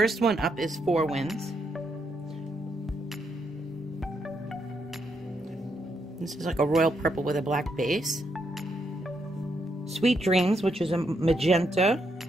one up is Four Winds. This is like a royal purple with a black base. Sweet Dreams, which is a magenta.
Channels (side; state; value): both; normal; correlation 0.78